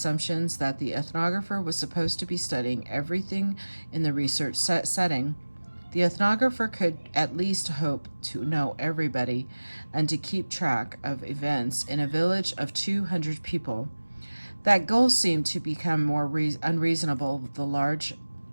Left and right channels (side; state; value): both; inverted; correlation -1.00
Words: that the ethnographer was supposed to be studying everything in the research setting. The ethnographer could at least hope to know everybody and to keep track of events in a village of 200 people. That goal seemed to become more unreasonable the larger